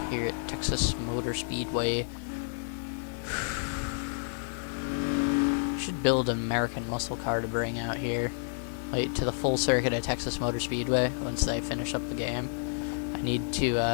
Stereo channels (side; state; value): right; silent; digital silence